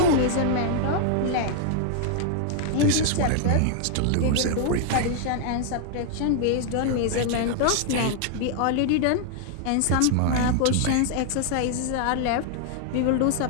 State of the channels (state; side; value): different; both; correlation 0.00